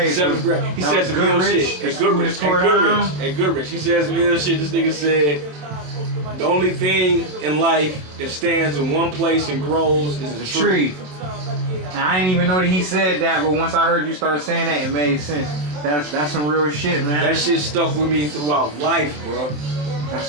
7th grade. He said some ill shit. At Goodrich. He said some ill shit. This nigga said, the only thing in life that stands in one place and grows is a tree. And I didn't even know that he said that, but once I heard you start saying that, it made sense. That's some real shit, man. That shit stuck with me throughout life, bro. That's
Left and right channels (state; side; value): late; left; 27 ms